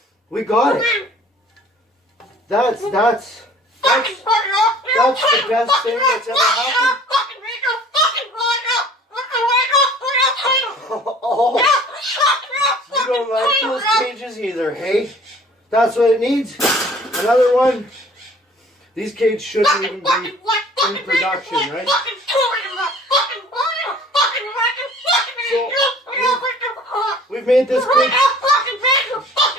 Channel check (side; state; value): both; normal; correlation 0.51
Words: We got it. That's the best thing that's ever happened. Oh, you don't like those cages either, hey? That's what it needs. Another one. These cages shouldn't even be in production, right? So, we've made this cage.